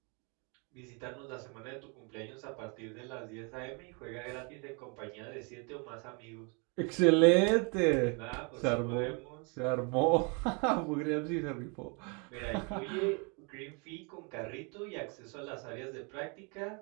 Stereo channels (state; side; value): quieter; left; 33.8 dB